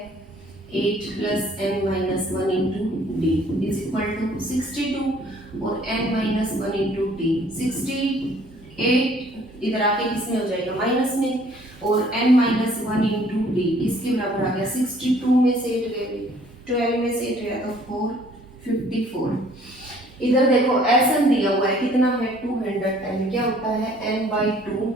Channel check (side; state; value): both; normal; correlation 0.58